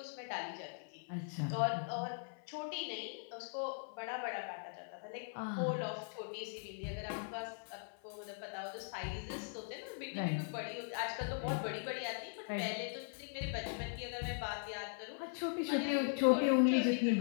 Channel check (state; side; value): silent; right; 51 dB below the other